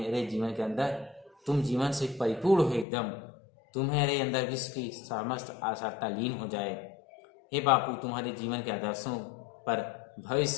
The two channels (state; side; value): drops out; right; at 2.9 s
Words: जीवन के अंदर तुम जीवन से परिपूर्ण हो एकदम। तुम्हारे अंदर विश्व की समस्त आशाता लीन हो जाए। हे बापू, तुम्हारे जीवन के आदर्शों पर